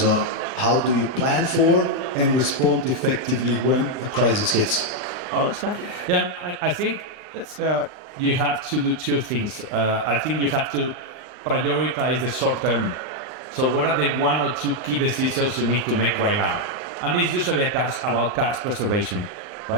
on, how do you plan for and respond effectively when a crisis hits? Oh, it's not. Yeah, I think you have to do two things. I think you have to prioritize the short term. So what are the one or two key decisions you need to make right now? And it's usually about cash preservation,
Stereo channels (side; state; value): left; late; 39 ms